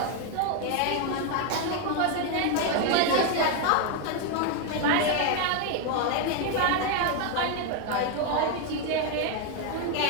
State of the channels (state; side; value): different; both; correlation 0.01